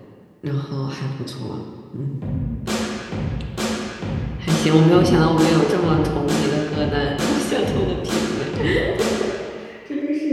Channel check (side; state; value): both; identical; correlation 1.00